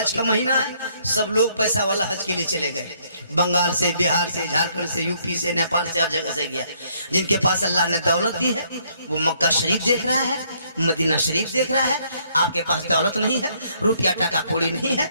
का महीना है, सब लोग पैसा वाला हज के लिए चले गए, बंगाल से, बिहार से, झारखंड से, यूपी से, नेपाल से, हर जगह से गया। जिनके पास अल्लाह ने दौलत दी है वो मक्का शरीफ देख रहा है, मदीना शरीफ देख रहा है, आपके पास दौलत नहीं है, रुपया टका कौड़ी नहीं है,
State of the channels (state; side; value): inverted; both; correlation -0.68